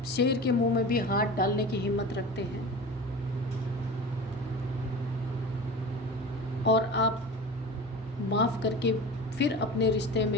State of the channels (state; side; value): normal; both; correlation 0.33